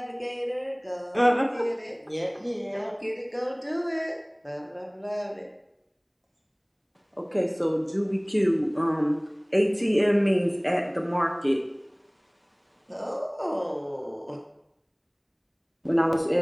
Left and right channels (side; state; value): both; identical; correlation 1.00